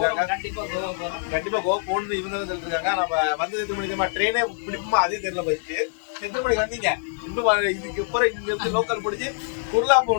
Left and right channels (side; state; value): right; silent; digital silence